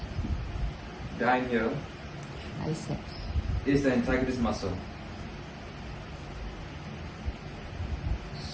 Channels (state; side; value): identical; both; correlation 1.00